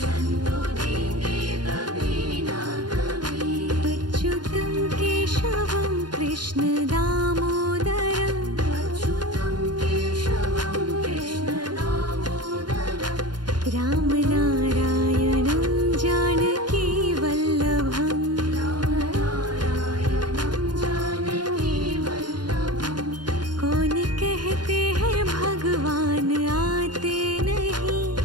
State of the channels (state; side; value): late; left; 0.71 ms